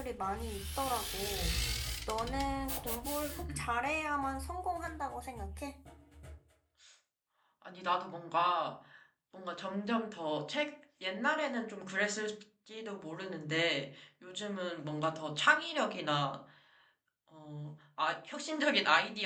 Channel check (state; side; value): identical; both; correlation 1.00